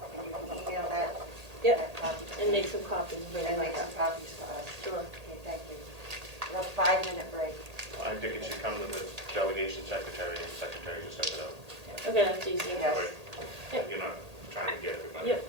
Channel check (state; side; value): late; left; 1.8 ms